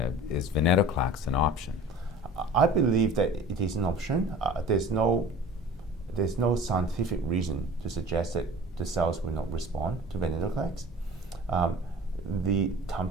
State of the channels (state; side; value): normal; both; correlation 0.42